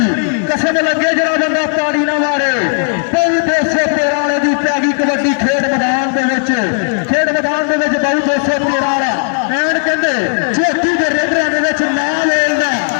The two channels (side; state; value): right; silent; 56 dB below the other